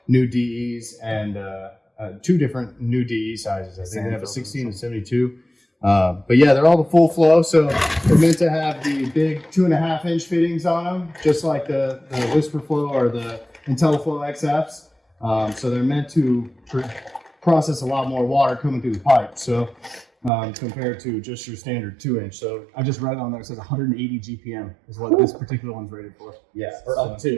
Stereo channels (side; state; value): left; drops out; at 20.3 s